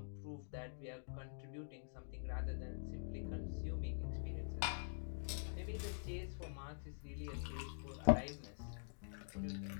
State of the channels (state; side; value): silent; right; digital silence